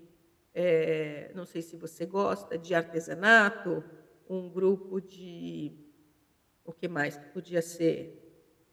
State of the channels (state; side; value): identical; both; correlation 1.00